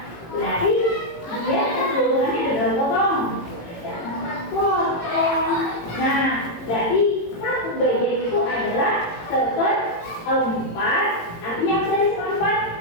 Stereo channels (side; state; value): right; late; 18 ms